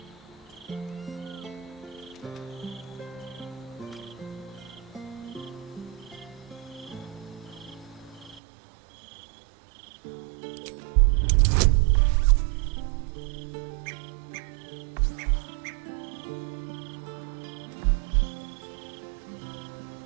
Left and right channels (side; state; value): left; drops out; at 8.4 s